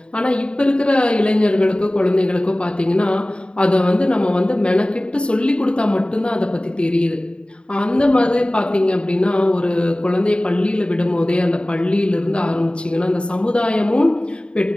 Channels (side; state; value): right; late; 0.053 ms